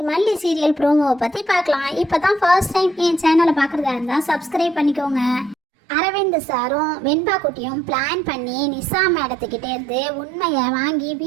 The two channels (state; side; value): drops out; left; at 5.6 s